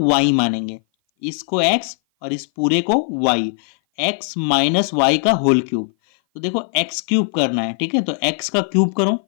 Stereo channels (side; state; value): right; silent; 57 dB below the other